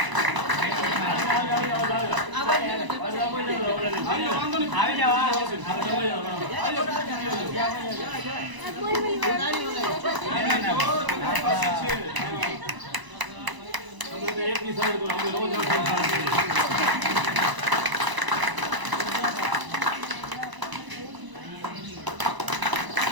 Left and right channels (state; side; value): late; left; 1.0 ms